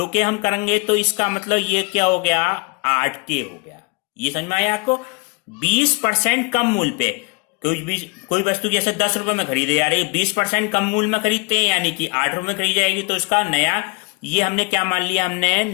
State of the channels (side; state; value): right; quieter; 30.9 dB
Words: के हम करेंगे तो इसका मतलब ये क्या हो गया 8 के हो गया। ये समझ में आया आपको, 20% कम मूल्य पे कोई वस्तु जैसे 10 रुपए में खरीदे जा रही है, 20% कम मूल्य में खरीदते हैं यानी कि 8 रुपए में खरीदी जाएगी, तो इसका नया, ये हमने क्या मान लिया, हमने